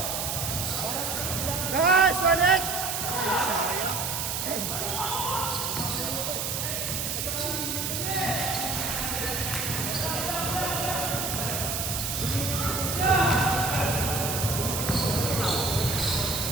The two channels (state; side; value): noise; right; hiss, 2 dB below the sound